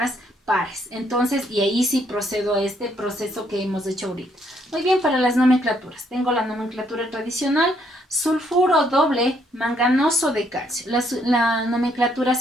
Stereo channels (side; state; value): both; normal; correlation 0.70